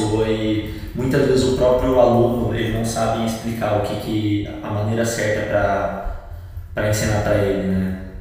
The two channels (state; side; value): identical; both; correlation 1.00